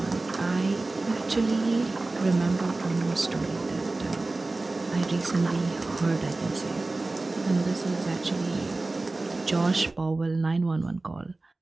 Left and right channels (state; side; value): quieter; left; 3.2 dB